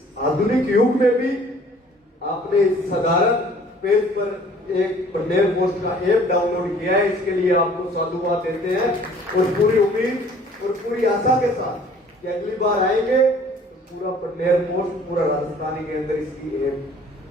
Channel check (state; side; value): normal; both; correlation 0.54